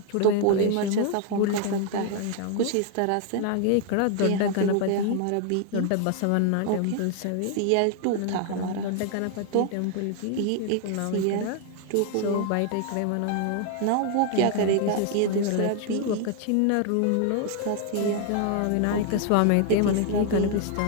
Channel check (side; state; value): both; different; correlation 0.00